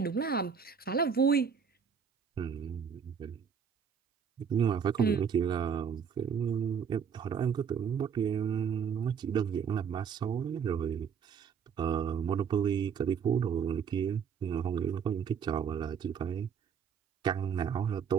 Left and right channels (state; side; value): quieter; left; 6.9 dB